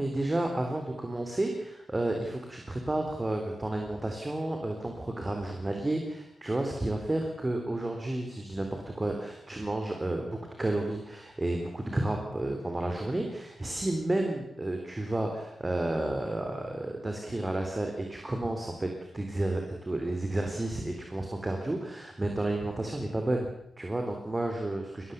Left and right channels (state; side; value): normal; both; correlation 0.96